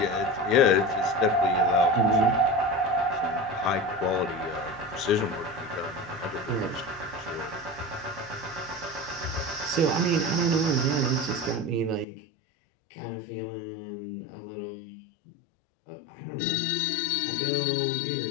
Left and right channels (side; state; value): right; drops out; at 12.1 s